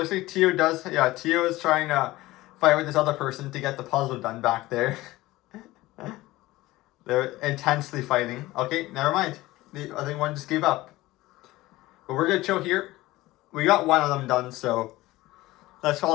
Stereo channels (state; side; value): quieter; right; 18.3 dB